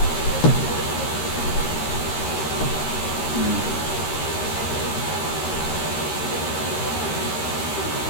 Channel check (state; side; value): late; right; 13 ms